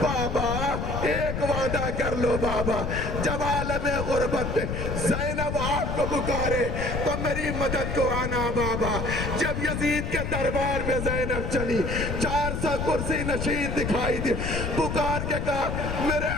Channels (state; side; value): noise; left; rumble, 2 dB below the sound